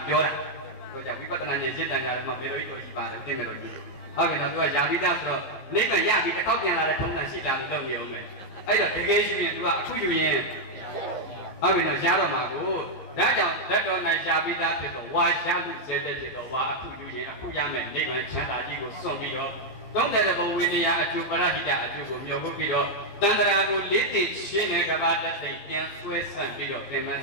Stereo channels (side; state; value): right; late; 15 ms